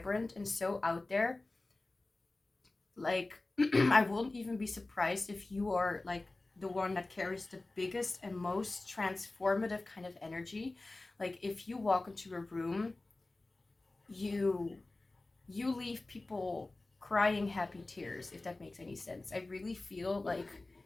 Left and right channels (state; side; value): quieter; right; 3.1 dB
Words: and so out there. Like, I wouldn't even be surprised if you are like the one that carries the biggest and most transformative kind of energy. Like if you walk into a room, you leave people crying happy tears, if that makes any sense. I really feel like